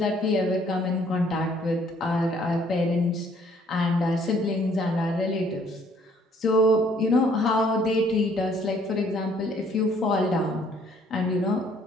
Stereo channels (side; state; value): both; normal; correlation 0.62